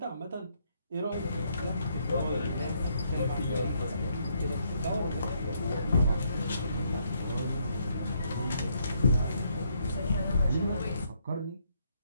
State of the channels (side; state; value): both; inverted; correlation -0.72